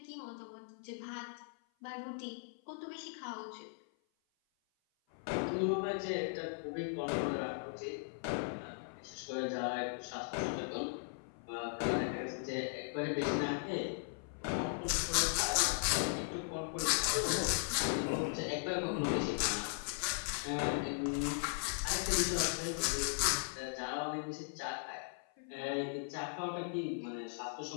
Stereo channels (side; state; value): right; silent; 52 dB below the other